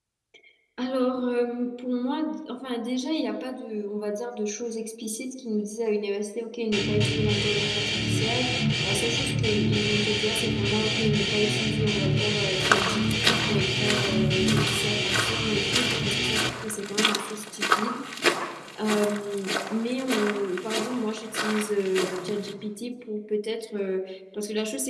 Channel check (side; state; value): both; identical; correlation 1.00